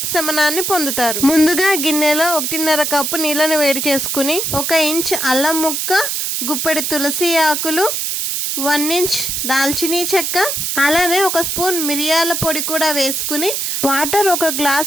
పొందుతారు. ముందుగా గిన్నెలో 1.5 కప్పు నీళ్ళను వేడి చేసుకుని 1 ఇంచ్ అల్లం ముక్క, గుప్పెడు తులసి ఆకులు, 1 ఇంచ్ దాల్చినీ చెక్క, అలానే 1 స్పూన్ మిరియాల పొడి కూడా వేసుకుని వాటర్ 1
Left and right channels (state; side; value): noise; right; hiss, 1 dB below the sound